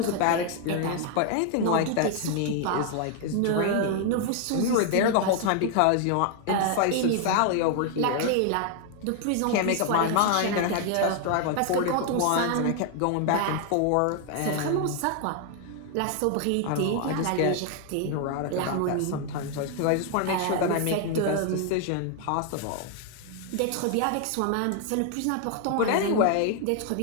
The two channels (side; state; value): both; different; correlation 0.00